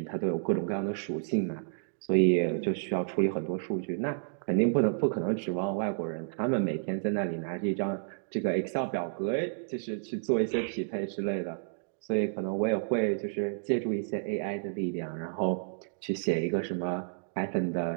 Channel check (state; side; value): silent; left; digital silence